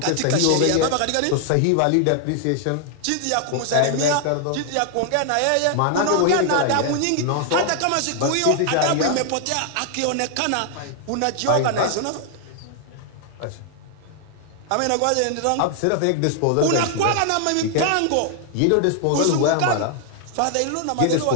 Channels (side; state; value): both; different; correlation 0.00